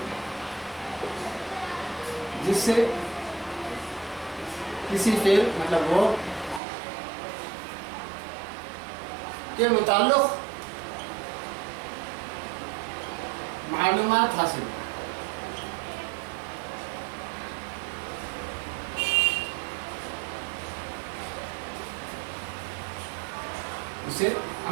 जिससे किसी फेल मतलब वो के मुताल्लिक़ मालूमात हासिल, उसे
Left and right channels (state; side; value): drops out; left; at 6.6 s